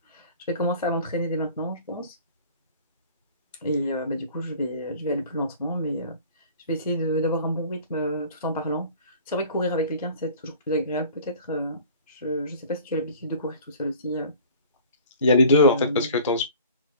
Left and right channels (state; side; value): inverted; both; correlation -0.47